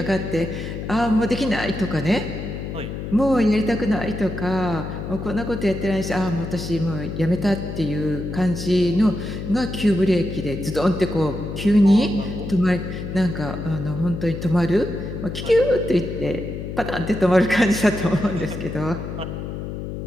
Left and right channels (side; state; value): left; noise; hum, 7 dB below the sound